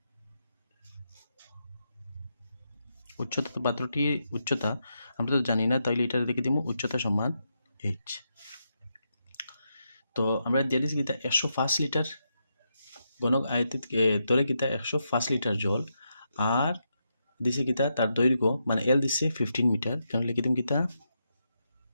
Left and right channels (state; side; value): inverted; both; correlation -0.83